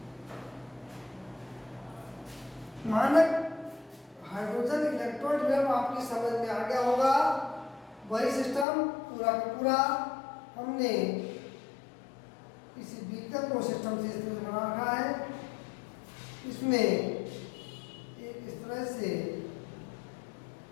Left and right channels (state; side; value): drops out; right; at 8.7 s